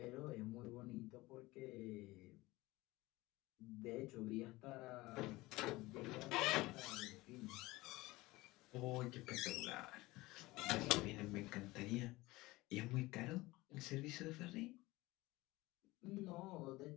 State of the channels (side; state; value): right; quieter; 20.2 dB